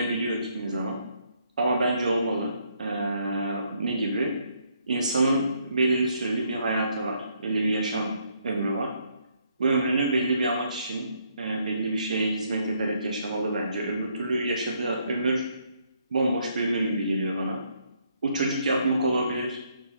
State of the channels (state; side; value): inverted; both; correlation -0.71